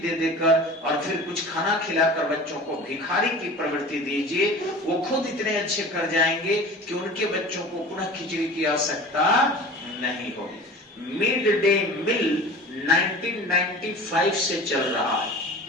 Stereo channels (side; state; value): both; normal; correlation 0.38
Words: देकर और फिर कुछ खाना खिलाकर बच्चों को भिखारी की प्रवृत्ति दीजिए। वो खुद इतने अच्छे कर जाएंगे कि उनके बच्चों को पुनः खिचड़ी की आवश्यकता नहीं होगी। मिड डे मील 1995 से चल रहा है।